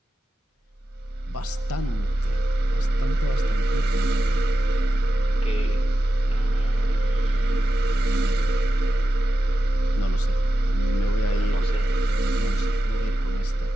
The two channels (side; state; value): both; normal; correlation 0.92